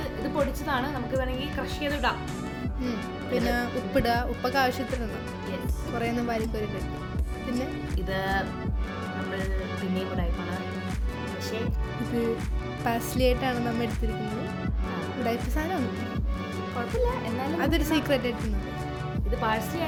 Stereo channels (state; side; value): identical; both; correlation 1.00